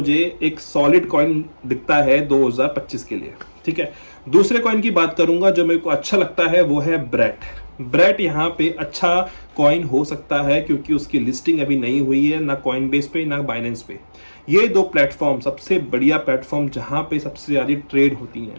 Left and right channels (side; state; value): both; inverted; correlation -1.00